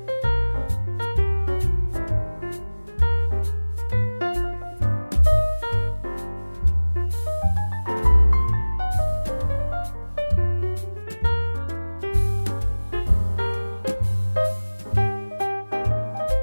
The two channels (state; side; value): inverted; both; correlation -1.00